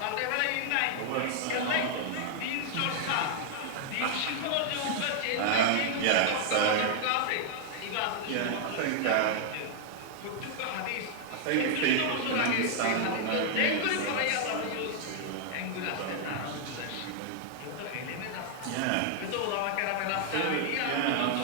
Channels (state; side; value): different; both; correlation 0.00